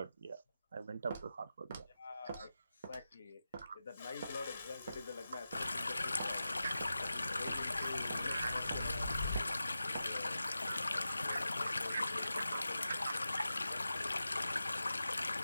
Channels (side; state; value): both; inverted; correlation -0.92